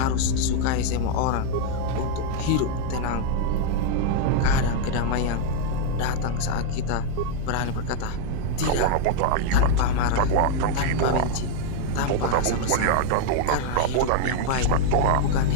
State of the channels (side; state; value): both; different; correlation 0.00